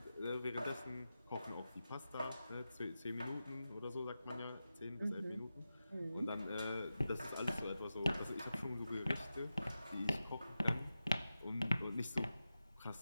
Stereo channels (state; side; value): inverted; both; correlation -0.92